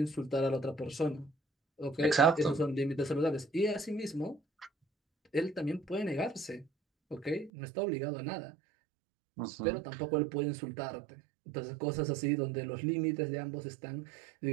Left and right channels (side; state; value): left; drops out; at 7.5 s